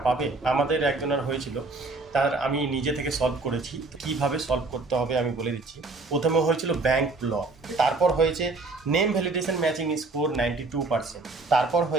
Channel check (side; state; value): left; quieter; 3.5 dB